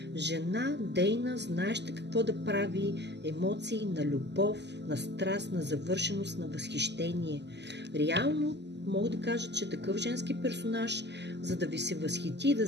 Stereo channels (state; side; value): late; left; 0.50 ms